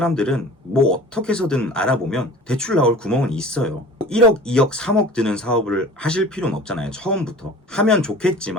뭐 어떻게 해서든 알아보면 대출 나올 구멍은 있어요. 1억, 2억, 3억 드는 사업을 하실 필요는 없잖아요. 처음부터. 하면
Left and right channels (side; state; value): both; normal; correlation 0.42